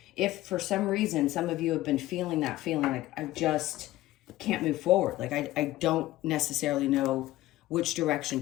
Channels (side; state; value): right; quieter; 16.3 dB